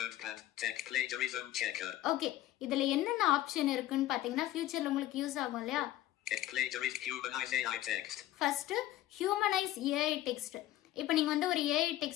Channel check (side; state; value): right; quieter; 14.5 dB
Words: ஓகே, இதுல என்னென்ன ஆப்ஷன் இருக்குன்னு பாத்தீங்கன்னா ஃபியூச்சர்ல உங்களுக்கு யூஸ் ஆகும் இல்லையா? First humanise AI text. இப்போ நீங்க வந்து ஒரு ஏஐ